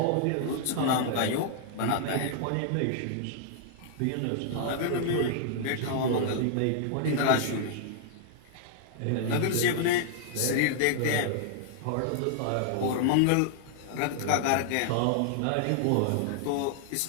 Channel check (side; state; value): both; different; correlation -0.01